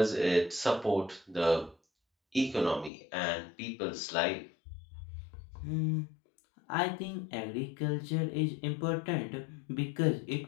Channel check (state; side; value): drops out; right; at 2.9 s